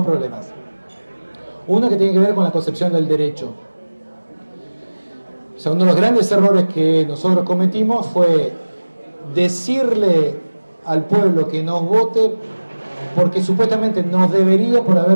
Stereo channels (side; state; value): both; inverted; correlation -1.00